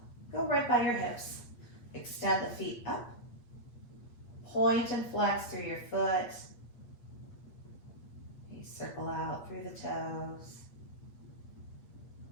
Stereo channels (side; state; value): right; late; 8.4 ms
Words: go right by your hips. Extend the feet up. Point and flex through your foot. You circle out through the toes.